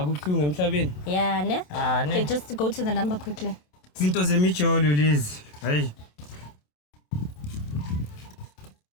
emhlabeni. Yeah, ne? Ne. Okay, just go to the number quickly. Izinto zemijolo lezi. Hayi.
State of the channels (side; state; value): right; late; 27 ms